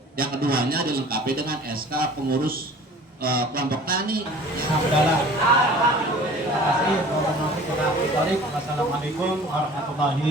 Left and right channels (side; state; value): both; normal; correlation 0.46